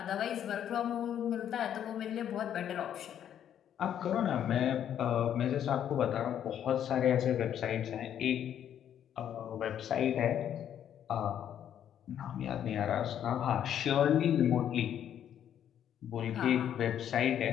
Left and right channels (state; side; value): quieter; right; 9.9 dB